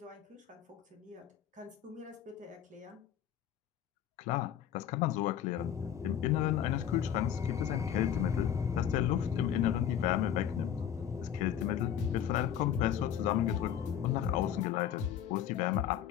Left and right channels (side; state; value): right; quieter; 9.6 dB